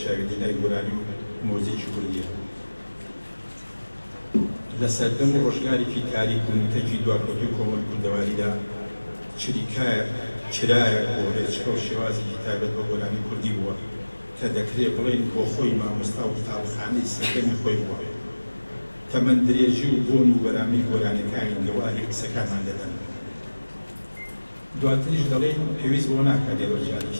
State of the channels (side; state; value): both; inverted; correlation -1.00